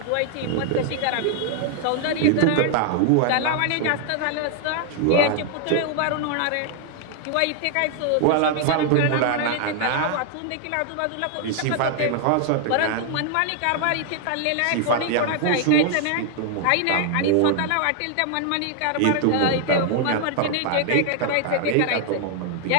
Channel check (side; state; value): both; different; correlation 0.00